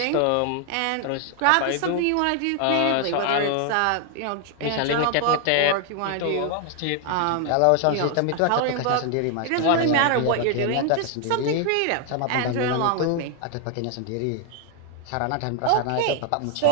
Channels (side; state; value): both; different; correlation 0.00